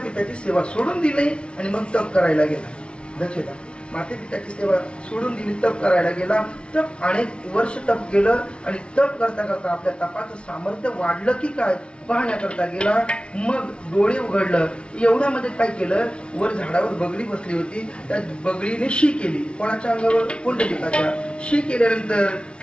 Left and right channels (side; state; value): right; late; 0.058 ms